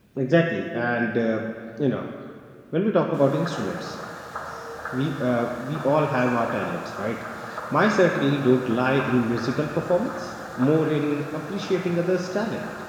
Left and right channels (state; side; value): identical; both; correlation 1.00